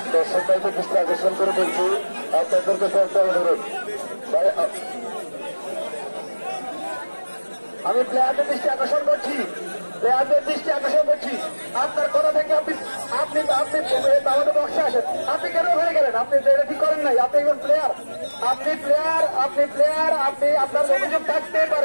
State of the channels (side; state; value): both; inverted; correlation -1.00